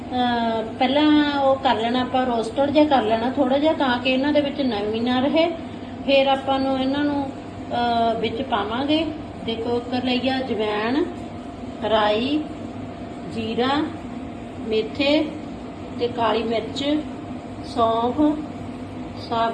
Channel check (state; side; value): identical; both; correlation 1.00